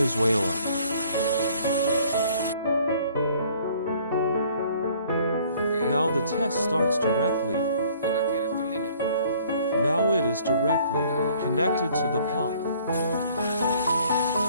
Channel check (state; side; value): inverted; both; correlation -0.57